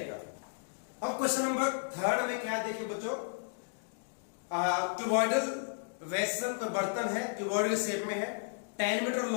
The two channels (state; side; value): silent; right; digital silence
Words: अब क्वेश्चन नंबर 3 में क्या देखिए बच्चों, क्यूबॉइडल वेसल का बर्तन है, क्यूबॉइडल शेप में है, 10 metre